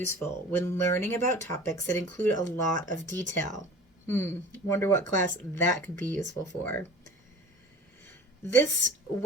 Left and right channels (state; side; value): normal; both; correlation 0.41